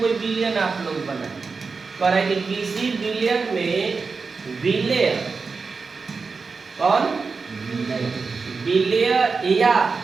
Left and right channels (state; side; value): quieter; left; 4.7 dB